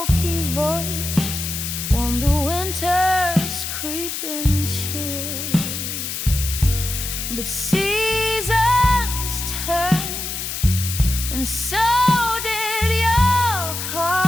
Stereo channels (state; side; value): noise; left; hiss, 5 dB below the sound